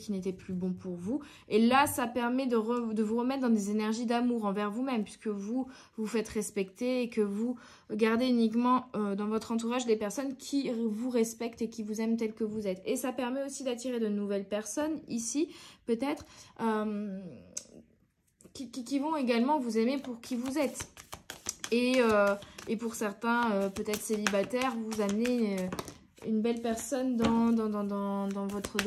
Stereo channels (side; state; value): both; identical; correlation 1.00